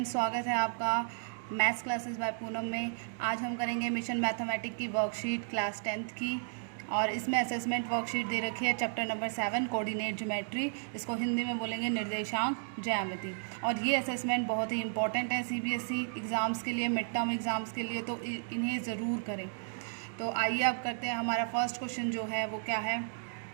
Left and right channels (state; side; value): silent; left; digital silence